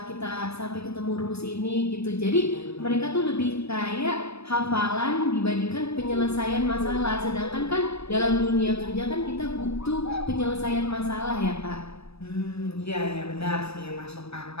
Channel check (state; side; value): late; right; 0.78 ms